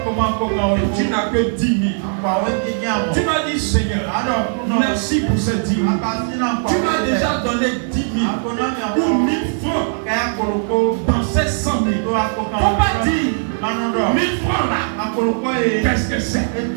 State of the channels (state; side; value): silent; left; digital silence